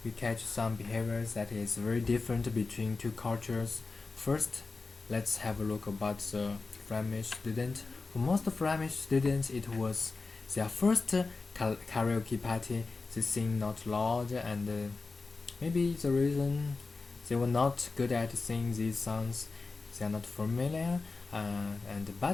we catch some behaviors that is very different between two cultures. First, let's have a look about the Flemish student. For most Flemish students, it was their first karaoke party. They sing not loud, and maybe the reason they were not good at singing these songs, they are not familiar.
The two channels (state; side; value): quieter; right; 4.0 dB